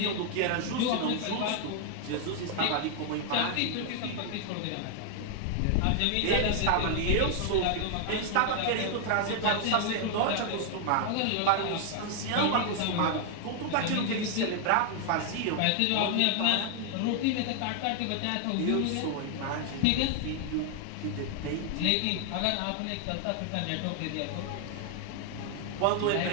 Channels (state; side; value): different; both; correlation 0.00